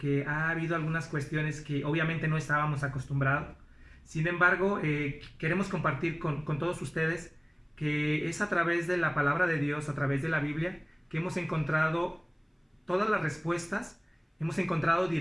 ha habido algunas cuestiones que obviamente no estábamos acostumbrados. Sin embargo, queremos compartir con todos ustedes que es a través de la palabra de Dios, a través de la Biblia, que hemos encontrado todas las respuestas, hemos encontrado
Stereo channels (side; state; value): both; identical; correlation 1.00